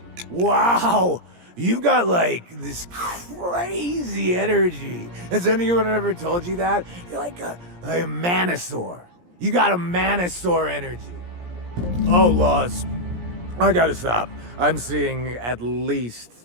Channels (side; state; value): left; late; 17 ms